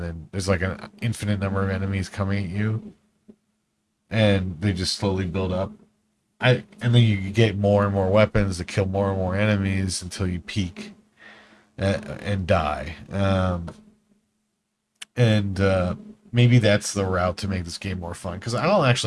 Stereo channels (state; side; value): identical; both; correlation 1.00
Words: then there's like an infinite number of enemies coming at you, and they just slowly build up. And then you get more and more weapons to kill more and more enemies until you peak and die. And maybe that's the route to make this game more fun, because I don't